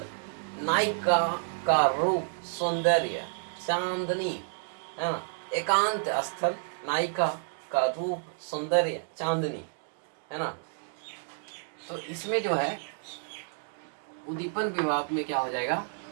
नायिका का रूप सौंदर्य चांदनी है ना, एकांत स्थल, नायिका का रूप सौंदर्य चांदनी है ना। तो इसमें जो है उद्दीपन विभाव में क्या हो जाएगा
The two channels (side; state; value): left; silent; digital silence